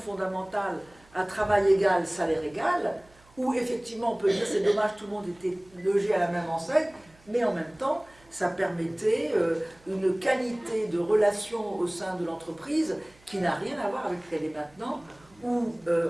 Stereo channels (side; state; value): right; noise; hum, 28 dB below the sound